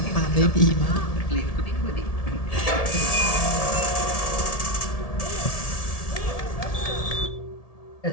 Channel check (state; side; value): late; right; 1.7 ms